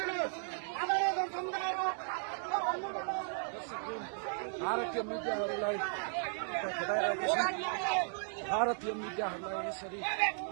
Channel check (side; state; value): left; silent; digital silence